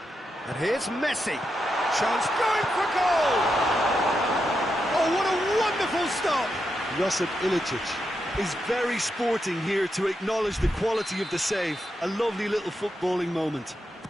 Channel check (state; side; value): normal; both; correlation 0.85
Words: And here's Messi. Chance going for goal! Oh, what a wonderful stop! Josip Ilicic is very sporting here to acknowledge the quality of the save. A lovely little footballing moment.